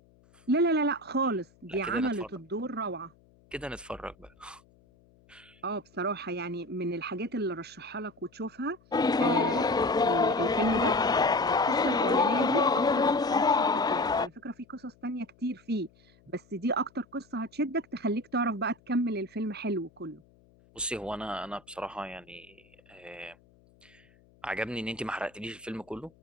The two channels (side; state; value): left; noise; hum, 30 dB below the sound